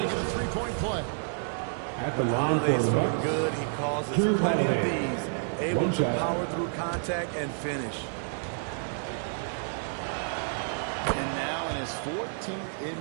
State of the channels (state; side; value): silent; left; digital silence